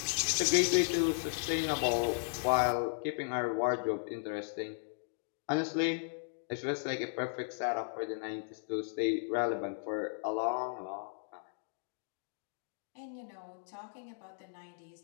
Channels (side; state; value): right; silent; digital silence